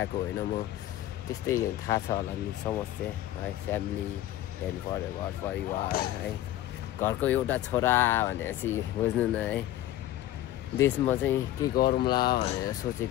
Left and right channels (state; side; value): quieter; right; 13.9 dB